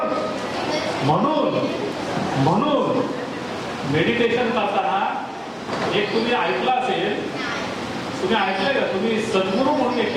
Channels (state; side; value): identical; both; correlation 1.00